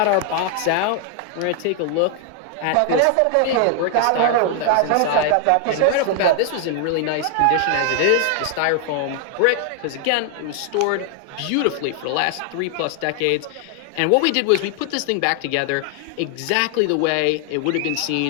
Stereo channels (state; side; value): different; both; correlation 0.00